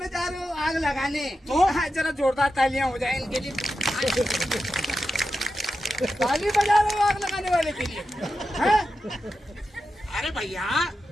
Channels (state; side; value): normal; both; correlation 0.90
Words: जा रहे हो आग लगाने? तो जरा जोरदार तालियां हो जाए इनके लिए। ताली बजा रहे हो आग लगाने वाले के लिए? अरे भैया